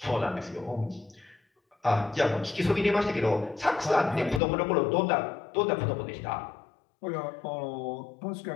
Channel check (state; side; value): drops out; right; at 4.4 s